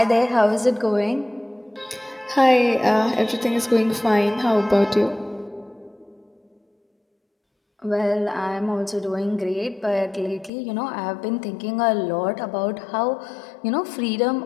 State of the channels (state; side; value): drops out; right; at 10.5 s